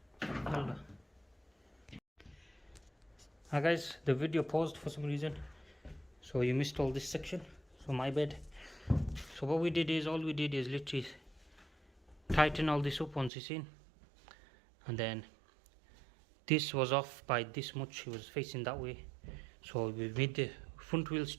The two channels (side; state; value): left; drops out; at 13.3 s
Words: Hi guys, the video paused for some reason, so you missed all this section, so my bad. So what we did is, all we did is literally tighten all this up once it's in, and then this was off by this much. It was facing that way, so we made the front wheel